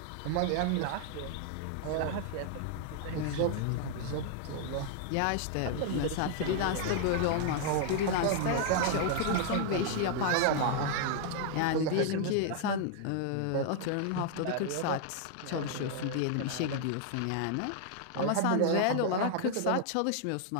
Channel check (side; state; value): both; different; correlation 0.00